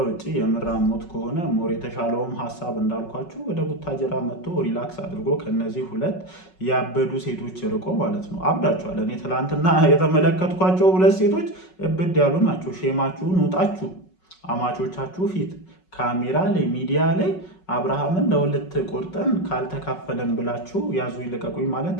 ውጭ የምራሞት ከሆነ ሞር የተሻለውም ሀሳብ እንዳልኳችሁ ወደ ቡታጀራ መጥቶ ሪላክስ አድርጎ ከነዚህ ሁለት ያበዱ ሴቶች ርቆ ማለት ነው። አብዳችኋል። እኔ ትላንትና የተመለከትኳቸው ሁለት ሴቶች እብድ ያሉ ናቸው። ሼማችሁን ውጣችሁ አማቾቻችሁ ፊት ካሜራ ላይ ሚዲያ ላይ አብርሃምን ለሁለት ቆርጠን ካልተካፈለን ብላችሁ ያዙ ይልቀቁኝ ማለት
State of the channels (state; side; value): late; right; 5.4 ms